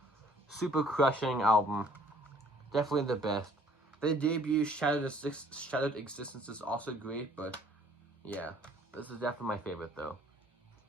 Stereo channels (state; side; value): normal; both; correlation 0.58